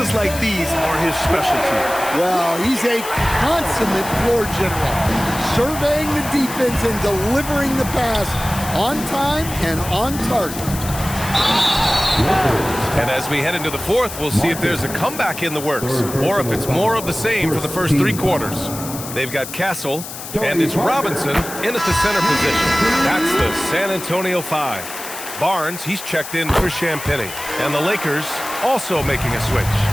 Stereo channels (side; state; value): left; noise; hiss, 10 dB below the sound